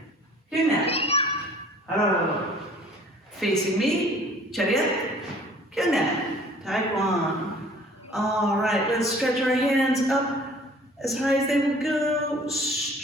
Do that. Oh. Facing me. Check it. Good that. Taekwon. All right. Let's stretch our hands up as high as they will go.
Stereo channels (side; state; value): both; normal; correlation 0.51